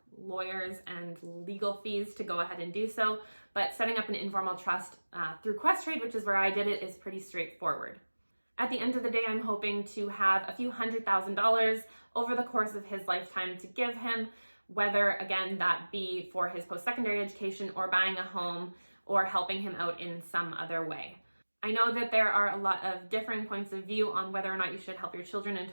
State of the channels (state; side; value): inverted; both; correlation -1.00